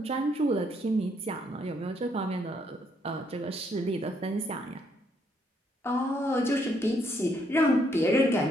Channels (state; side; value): normal; both; correlation 0.72